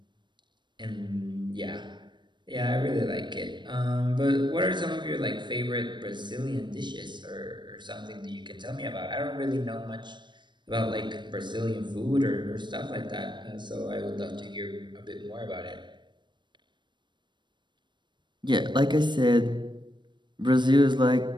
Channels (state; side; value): late; left; 0.22 ms